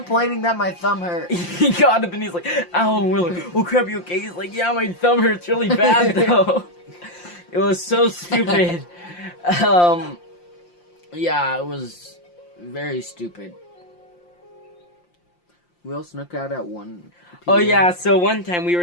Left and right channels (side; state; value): right; late; 5.7 ms